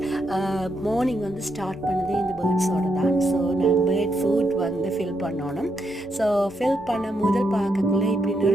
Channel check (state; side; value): normal; both; correlation 0.81